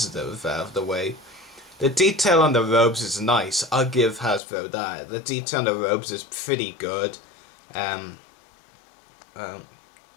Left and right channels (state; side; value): drops out; right; at 4.4 s